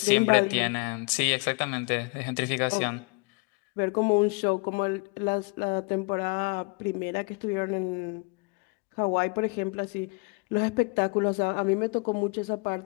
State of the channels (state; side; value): quieter; right; 31.2 dB